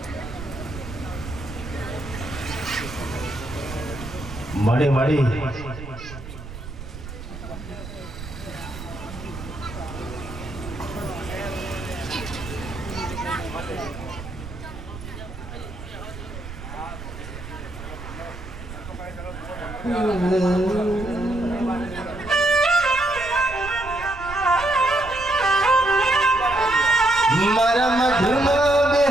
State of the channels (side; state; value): right; noise; rumble, 12 dB below the sound